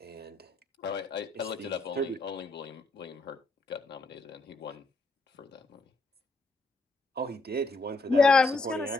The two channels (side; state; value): right; quieter; 3.2 dB